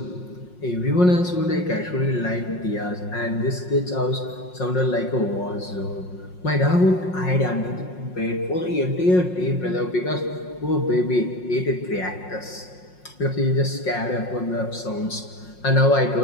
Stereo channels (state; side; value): late; right; 5.5 ms